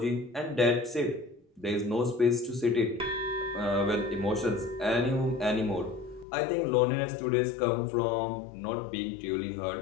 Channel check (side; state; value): right; drops out; at 6.2 s